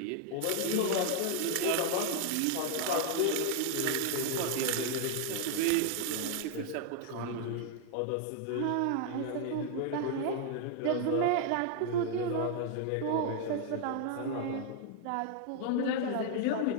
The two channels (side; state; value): both; different; correlation 0.00